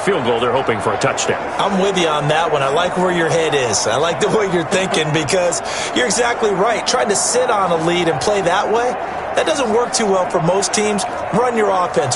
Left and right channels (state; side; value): identical; both; correlation 1.00